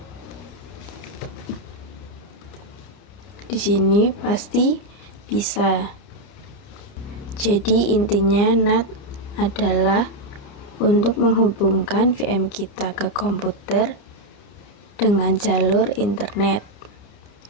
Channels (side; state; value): right; late; 29 ms